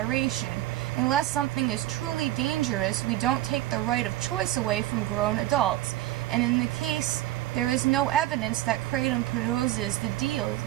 Unless something is truly dangerous, we don't take the right of choice away from grown adults. And in the case, there is no evidence that kratom poses the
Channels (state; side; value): quieter; left; 15.2 dB